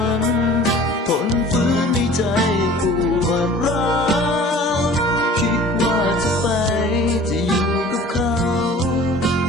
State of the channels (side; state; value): both; normal; correlation 0.46